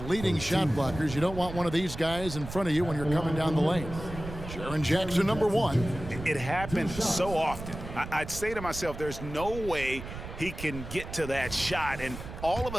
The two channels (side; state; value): right; noise; rumble, 10 dB below the sound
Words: leading shot blockers. You don't want one of these guys in front of you when you're coming down the lane. Jaren Jackson, number 1. It happens so often. I'd say to myself, there's no way he can get to that shot, and all of